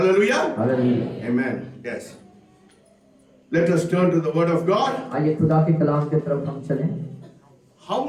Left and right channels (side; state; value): both; identical; correlation 1.00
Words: amen. Yes, let us turn to the word of God. आइए खुदा के कलाम की तरफ हम चलें। How